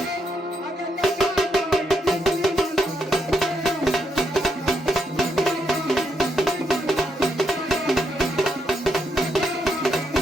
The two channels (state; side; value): normal; both; correlation 0.79